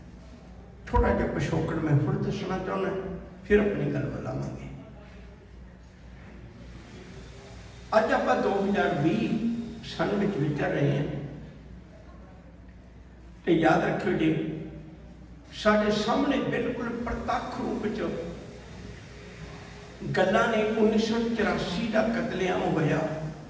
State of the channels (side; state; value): both; identical; correlation 1.00